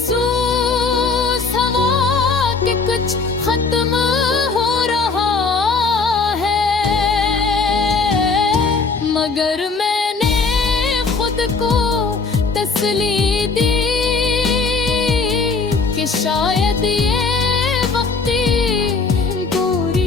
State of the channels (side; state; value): right; quieter; 4.4 dB